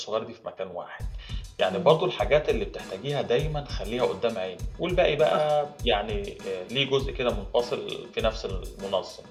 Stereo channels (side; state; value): both; identical; correlation 1.00